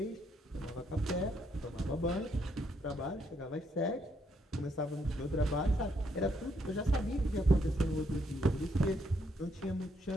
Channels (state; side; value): normal; both; correlation 0.74